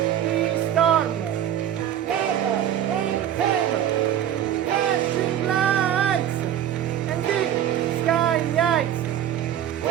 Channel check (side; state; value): left; quieter; 10.6 dB